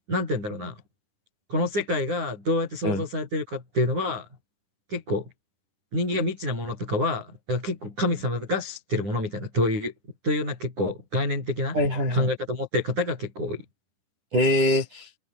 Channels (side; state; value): left; late; 10 ms